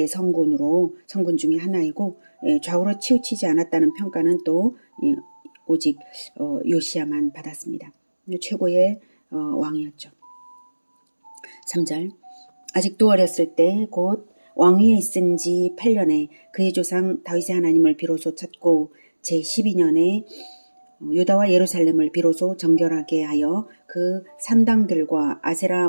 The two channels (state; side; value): inverted; both; correlation -1.00